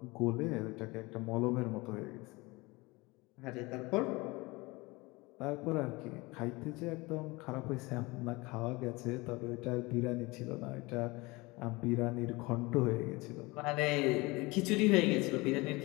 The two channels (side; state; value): right; quieter; 23.8 dB